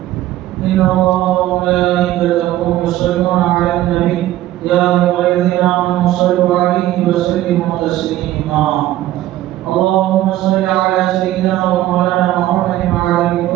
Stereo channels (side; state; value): left; quieter; 14.5 dB